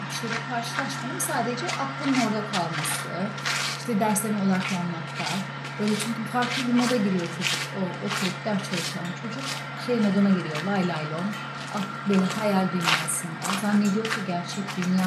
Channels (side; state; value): both; identical; correlation 1.00